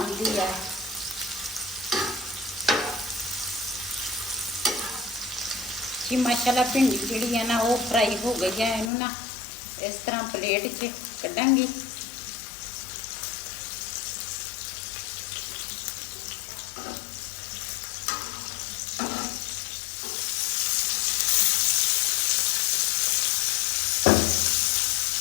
ਹੈ। ਜੀ ਮਾਸ਼ਾਅੱਲਾ ਭਿੰਡੀ ਜਿਹੜੀ ਹੈ ਨਾ ਉਹ ਫਰਾਈ ਹੋ ਗਈ ਹੈ। ਇਹਨੂੰ ਨਾ ਇਸ ਤਰ੍ਹਾਂ ਪਲੇਟ 'ਚ ਕੱਢਾਂਗੀ।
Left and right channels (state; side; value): drops out; right; at 8.9 s